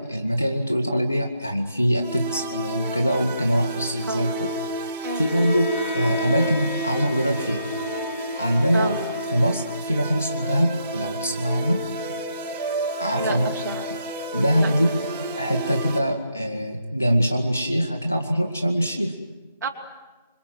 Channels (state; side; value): inverted; both; correlation -0.79